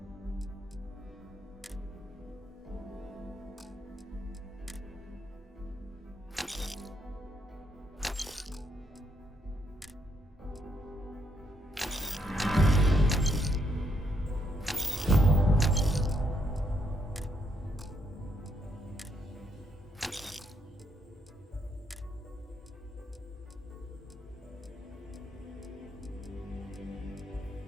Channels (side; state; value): both; normal; correlation 0.75